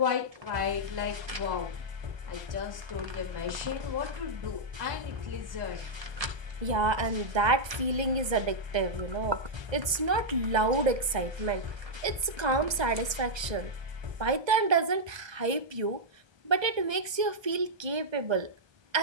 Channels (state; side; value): late; left; 1.3 ms